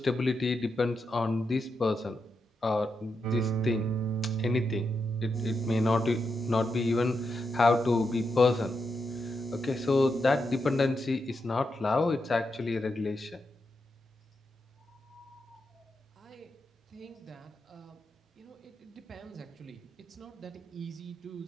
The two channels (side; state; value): both; normal; correlation 0.85